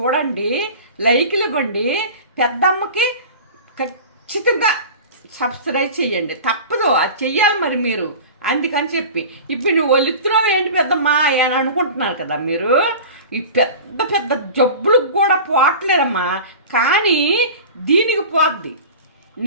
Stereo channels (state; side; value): inverted; both; correlation -0.35